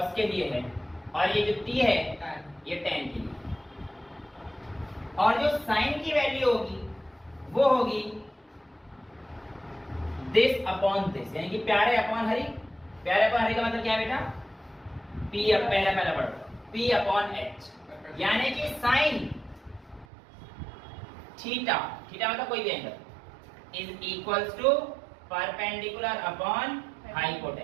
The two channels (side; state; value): left; drops out; at 20.1 s